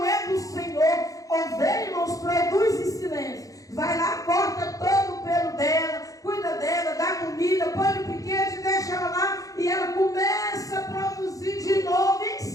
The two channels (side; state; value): right; late; 0.17 ms